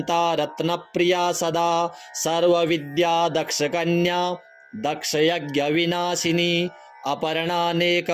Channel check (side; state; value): both; identical; correlation 1.00